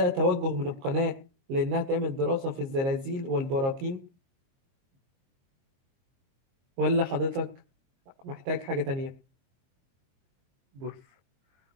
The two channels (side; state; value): left; late; 22 ms